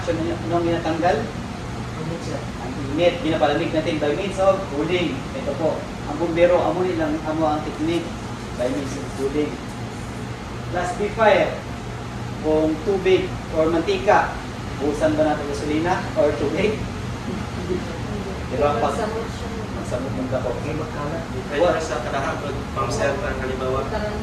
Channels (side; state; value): both; identical; correlation 1.00